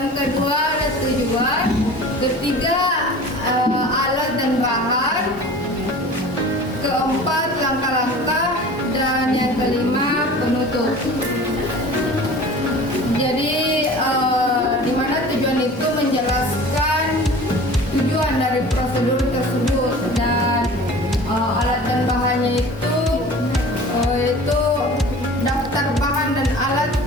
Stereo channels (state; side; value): normal; both; correlation 0.41